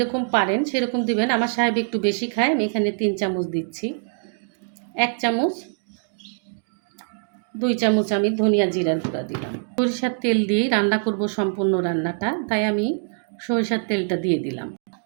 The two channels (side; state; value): left; silent; digital silence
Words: পারেন সেরকম দিবেন। আমার সাহেব একটু বেশি খায়, আমি এখানে 3 চামচ দিচ্ছি। 1 চামচ, 2 চামচ আমি ধনিয়া জিরার গুঁড়া দিলাম। সরিষার তেল দিয়েই রান্না করব সম্পূর্ণ রান্নাটা, তাই আমি সরিষার তেলটা দিয়ে দিলাম।